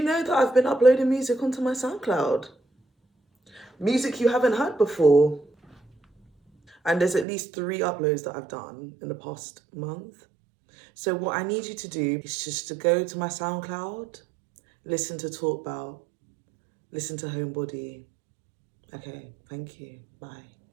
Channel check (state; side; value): drops out; left; at 7.2 s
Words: know that I've been uploading music onto my SoundCloud? Music you haven't heard before. And there's at least 3 uploads that I've done in the past month. So what I need you to do is just to go to my SoundCloud, listen to Talk About, listen to Homebody. Okay, thank you. Bye.